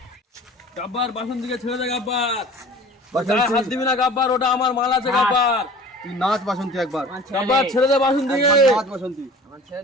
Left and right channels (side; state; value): both; normal; correlation 0.43